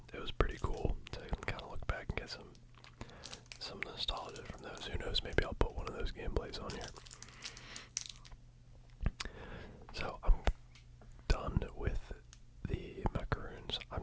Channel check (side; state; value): both; identical; correlation 1.00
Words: it was pretty cool to kind of look back and get some nostalgia from those. Who knows, maybe I'll put one of those gameplays on here. So I'm done with the Macaroons. I'm